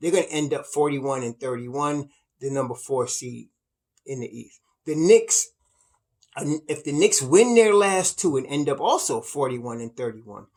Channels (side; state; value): both; identical; correlation 1.00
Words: going to end up 41-31, the number 4 seed in the East. The Knicks, if the Knicks win their last 2 and end up also 41-31,